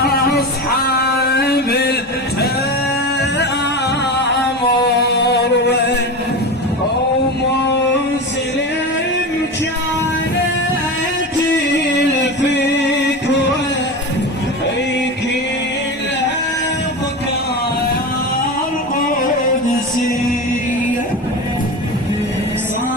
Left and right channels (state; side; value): normal; both; correlation 0.25